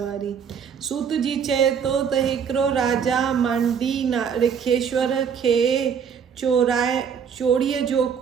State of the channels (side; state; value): left; quieter; 7.2 dB